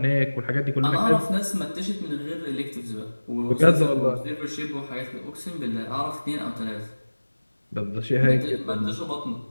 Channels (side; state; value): both; inverted; correlation -1.00